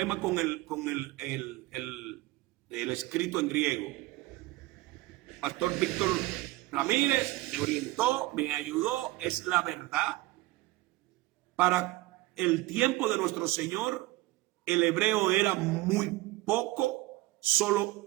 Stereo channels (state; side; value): quieter; left; 18.9 dB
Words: con el escrito en griego. Pastor Víctor Ramírez me orientó, me ayudó, es la verdad. Para el tiempo de nuestro Señor, el hebreo era muy poco, solo